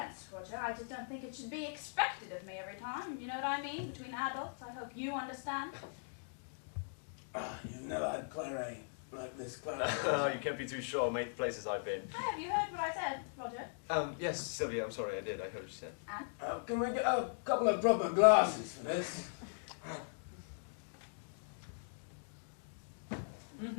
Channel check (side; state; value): right; silent; digital silence